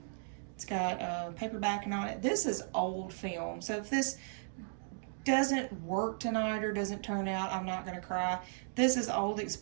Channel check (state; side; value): silent; left; digital silence